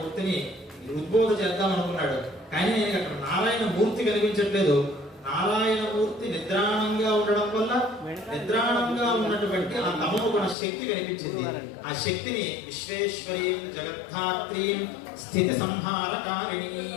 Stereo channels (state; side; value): drops out; right; at 10.6 s